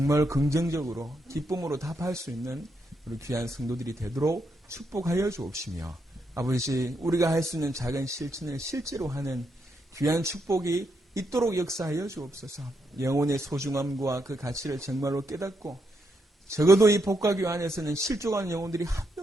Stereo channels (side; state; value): both; normal; correlation 0.80